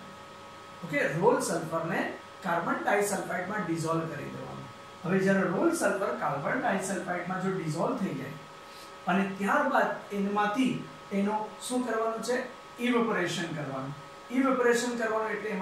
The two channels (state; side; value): identical; both; correlation 1.00